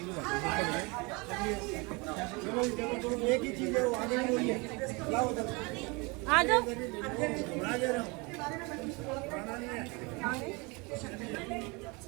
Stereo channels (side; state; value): left; quieter; 28.0 dB